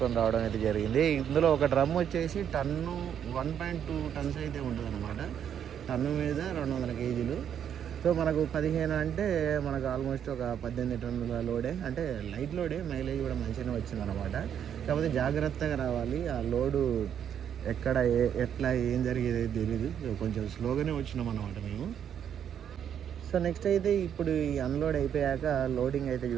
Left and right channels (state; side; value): quieter; left; 8.9 dB